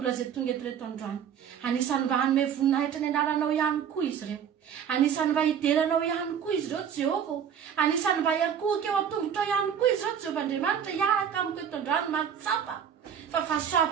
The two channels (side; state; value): left; quieter; 8.3 dB